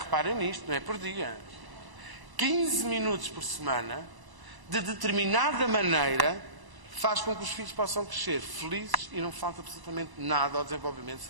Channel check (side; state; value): left; late; 1.0 ms